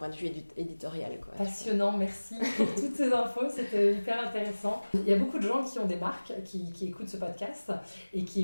de vue éditorial. Quoi. Passionnant, merci pour toutes ces infos, c'était hyper intéressant. Il y a beaucoup de gens qui ont des marques, qui écoutent ce podcast et qui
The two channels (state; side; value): inverted; both; correlation -1.00